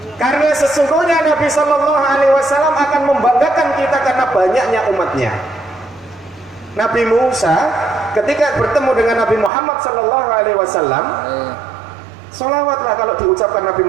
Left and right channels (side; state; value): left; drops out; at 9.5 s